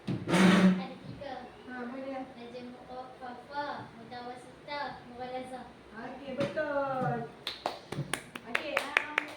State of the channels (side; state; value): both; identical; correlation 1.00